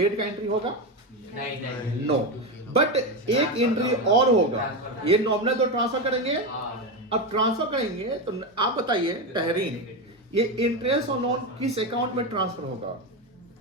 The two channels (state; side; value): normal; both; correlation 0.14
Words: का एंट्री होगा? नहीं। नो, बट एक एंट्री और होगा। ये नॉमिनल तो ट्रांसफर करेंगे, अब ट्रांसफर करेंगे तो आप बताइए तहरीन, ये इंटरेस्ट और लोन किस अकाउंट में ट्रांसफर होगा?